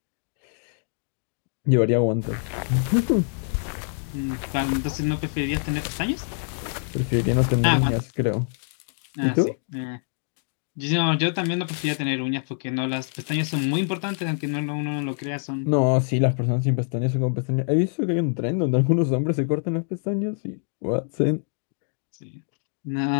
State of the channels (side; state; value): right; silent; digital silence